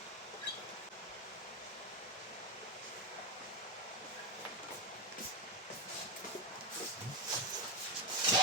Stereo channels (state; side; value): normal; both; correlation 0.11